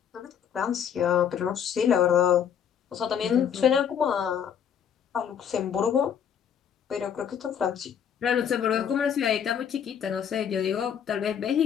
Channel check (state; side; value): quieter; right; 8.3 dB